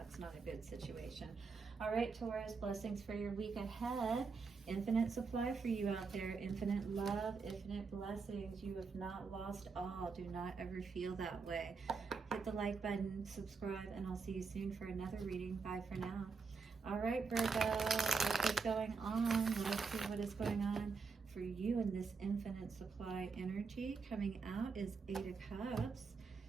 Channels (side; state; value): left; quieter; 4.9 dB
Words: not a good situation. All right, Taurus, blessings for your week ahead. Infinite supply for you out there. Infinite love, infinite blessings. You have not lost all. Do not ever feel that way. Hit the like button, subscribe, and I'll see you soon for another reading. Bye for now. All right, Virgo, what is going on? Let's see what is going on for you in this infinite supply energy. Coming out is 8 of Cups